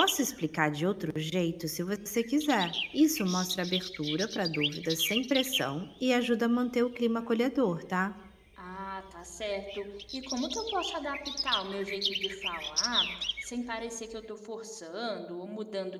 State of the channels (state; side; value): identical; both; correlation 1.00